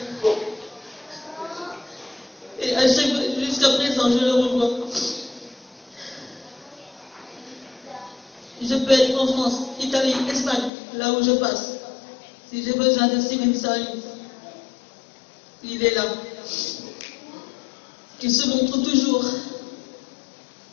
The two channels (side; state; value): right; drops out; at 10.7 s